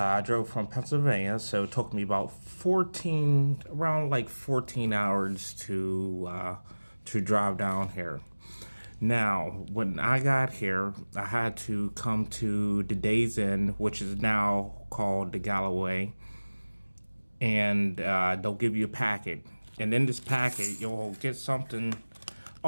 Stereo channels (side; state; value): both; inverted; correlation -1.00